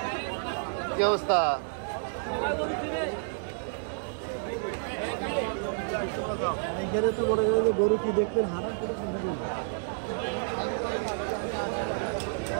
কি অবস্থা? গরু কি দেখবেন?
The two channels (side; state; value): left; silent; digital silence